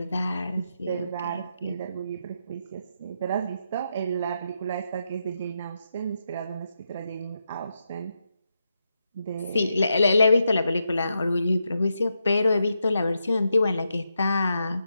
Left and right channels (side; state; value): both; inverted; correlation -0.84